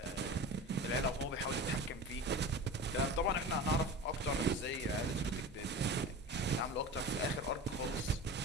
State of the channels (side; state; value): both; normal; correlation 0.32